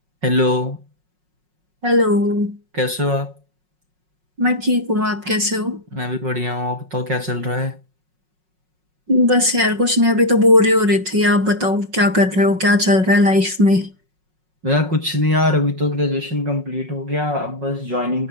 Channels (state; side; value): late; left; 5.5 ms